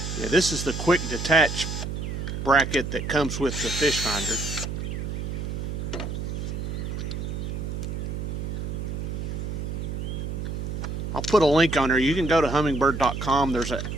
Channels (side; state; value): right; noise; hum, 4 dB below the sound